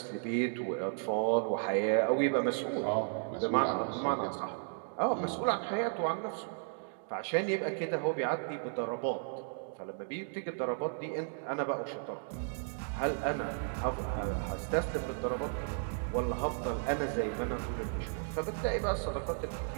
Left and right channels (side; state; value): left; silent; digital silence